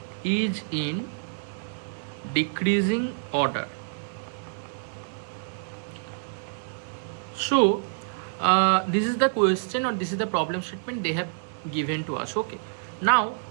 is in decreasing order. So this is the question, or this is the problem statement they have given to us. Okay, now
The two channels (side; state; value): left; silent; digital silence